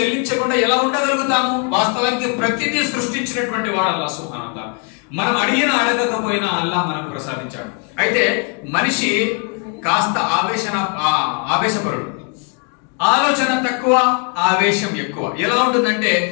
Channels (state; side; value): quieter; right; 37.0 dB